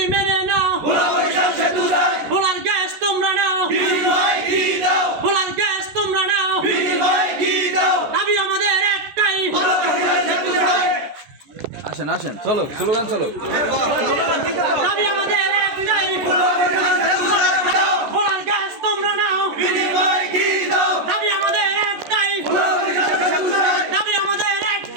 মেনে নাও, ভোলার গ্যাস তোমরা নাও, ভোলার গ্যাস তোমরা নাও, দাবি আমাদের একটাই। আসেন আসেন, চলো স্লোগান চলো। দাবি আমাদের একটাই, ভোলার গ্যাস তোমরা নাও, দাবি আমাদের একটাই, দাবি আমাদের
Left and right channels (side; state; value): left; late; 14 ms